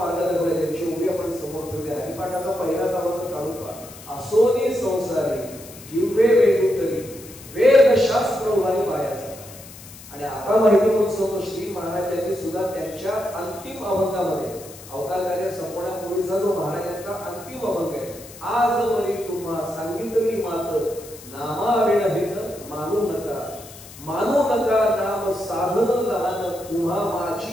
दाखवलाय, त्यांची उभी आपण समोर ठेवली. हरिपाठाचा पहिलाच आवाज काढून पहा, असोनी संसारी जिव्हे वेगुतरी वेद शास्त्र उभारी पायाचा. आणि आता माहिती म्हणून सांगतो श्री महाराजांनी सुद्धा त्यांच्या अंतिम अभंगामध्ये, अवतार कार्य संपवण्यापूर्वीचा जो महाराजांचा अंतिम अभंग आहे, आज वरी तुम्हा सांगितली मात नामाविण हित मानू नका, मानू नका नाम साधन लहान तुम्हा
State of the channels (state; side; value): noise; left; hiss, 17 dB below the sound